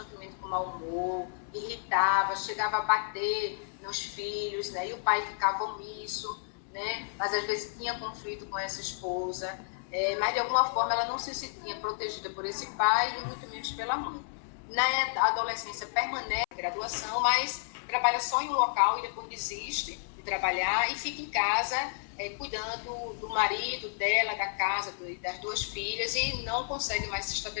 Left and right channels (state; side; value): silent; right; 57 dB below the other